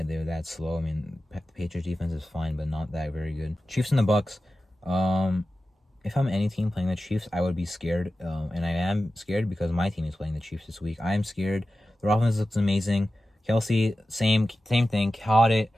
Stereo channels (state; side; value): normal; both; correlation 0.94